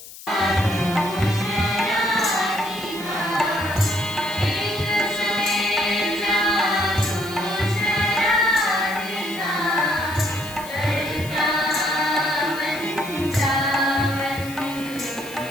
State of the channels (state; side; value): noise; left; hiss, 16 dB below the sound